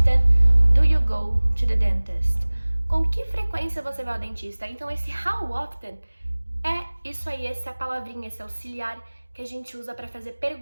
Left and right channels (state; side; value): inverted; both; correlation -1.00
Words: do you go to the dentist? Com que frequência você vai ao dentista? Então, esse how often é isso aí, essa palavrinha, esse auxiliar que a gente usa para fazer